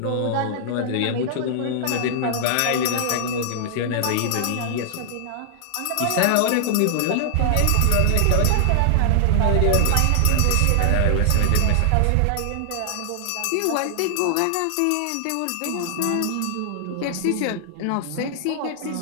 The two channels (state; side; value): different; both; correlation -0.01